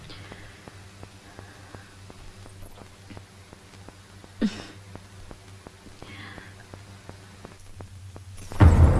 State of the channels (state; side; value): identical; both; correlation 1.00